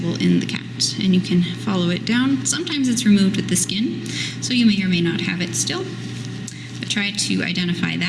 in the cat, and you can follow it down. Sometimes it's removed with the skin, so you may or may not have it still, but try to identify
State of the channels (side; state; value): both; identical; correlation 1.00